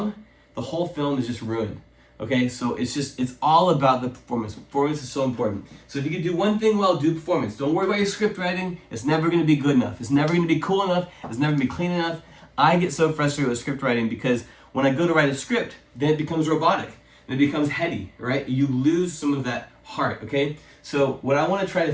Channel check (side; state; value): both; identical; correlation 1.00